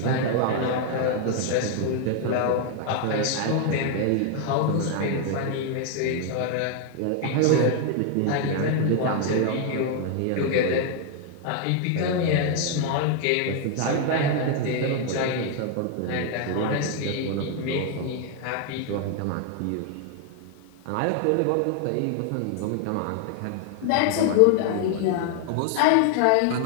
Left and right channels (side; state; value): both; different; correlation 0.00